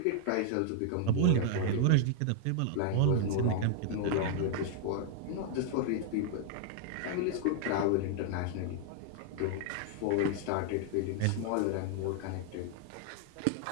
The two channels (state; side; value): different; both; correlation 0.00